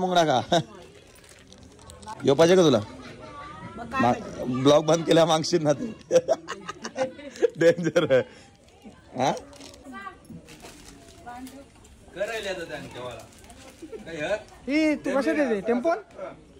का? यो पाहिजे का तुला? ब्लॉग बंद केला मागशील ना तू. डेंजर आहे. हा तू कसं देते?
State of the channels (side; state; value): both; identical; correlation 1.00